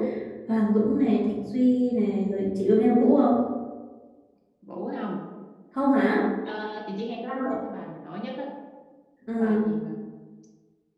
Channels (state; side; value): identical; both; correlation 1.00